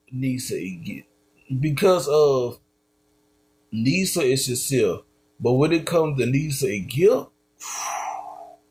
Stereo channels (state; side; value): identical; both; correlation 1.00